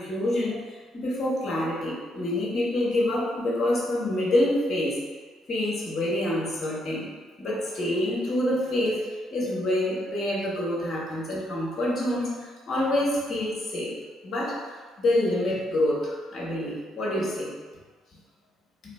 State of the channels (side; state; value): both; normal; correlation 0.76